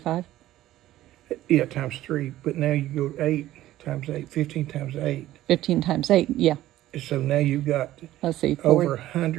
Yeah, times 3, but now you go 8 times 8, 15 times 8. 15 times 8, yeah. So now you've got Let's see, 40. over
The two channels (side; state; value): left; quieter; 14.6 dB